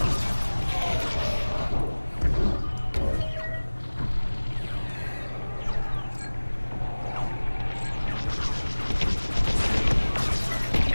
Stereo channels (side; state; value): both; inverted; correlation -1.00